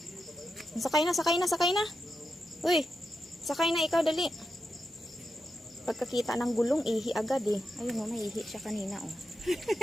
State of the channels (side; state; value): both; normal; correlation 0.87